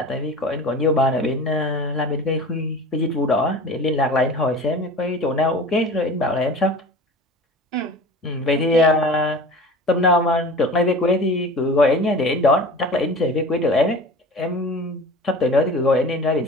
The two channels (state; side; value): normal; both; correlation 0.38